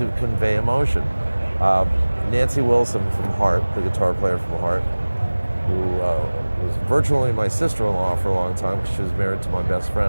convey emotion. Nancy Wilson from Heart, the guitar player from Heart, who was virtually my sister-in-law for a long time because she was married to my best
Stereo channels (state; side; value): inverted; both; correlation -1.00